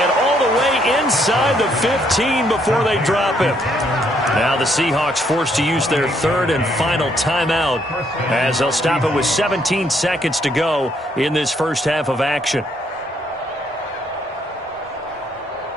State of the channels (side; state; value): both; normal; correlation 0.71